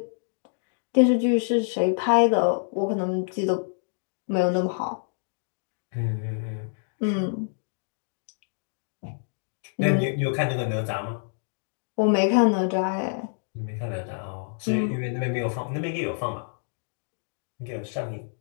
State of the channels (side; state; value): right; silent; digital silence